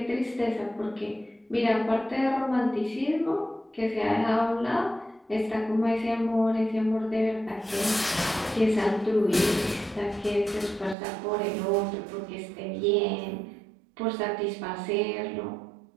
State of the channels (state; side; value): drops out; left; at 11.0 s